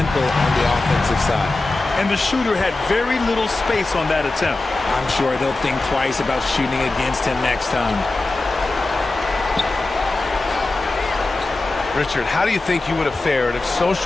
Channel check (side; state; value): right; quieter; 3.1 dB